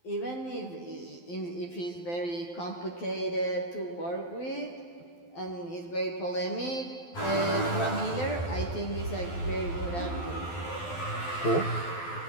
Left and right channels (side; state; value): right; late; 12 ms